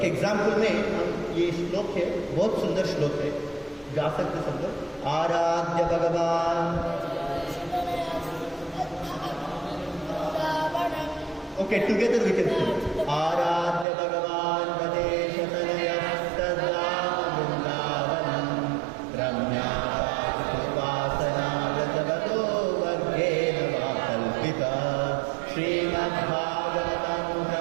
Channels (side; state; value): left; drops out; at 13.9 s